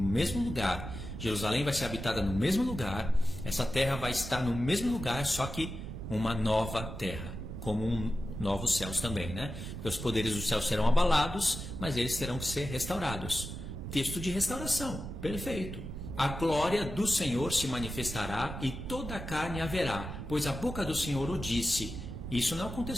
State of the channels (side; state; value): right; noise; rumble, 8 dB below the sound